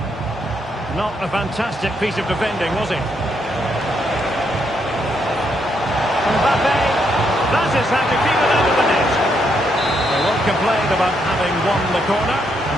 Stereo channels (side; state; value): both; normal; correlation 0.77